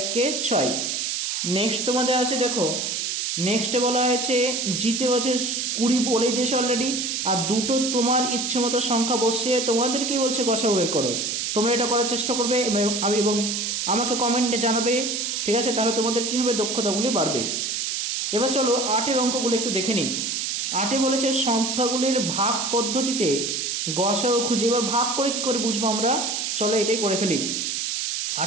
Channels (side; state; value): right; noise; hiss, 1 dB below the sound